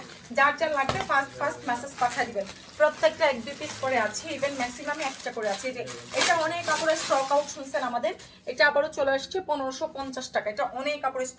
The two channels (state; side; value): identical; both; correlation 1.00